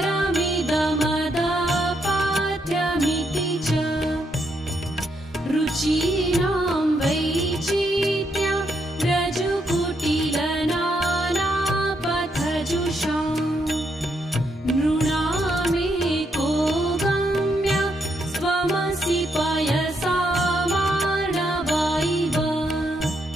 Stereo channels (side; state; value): both; normal; correlation 0.77